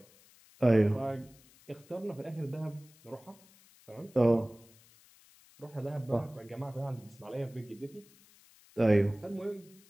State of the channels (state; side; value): noise; left; hiss, 27 dB below the sound